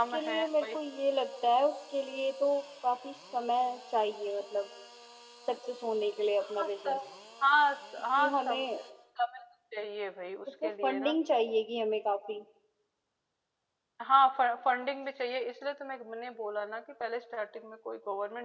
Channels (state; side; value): identical; both; correlation 1.00